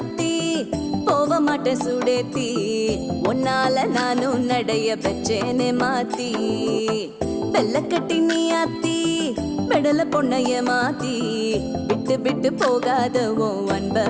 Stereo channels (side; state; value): both; identical; correlation 1.00